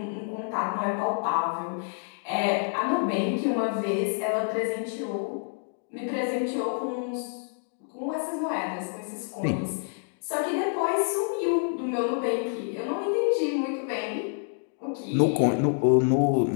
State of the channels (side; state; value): right; silent; 60 dB below the other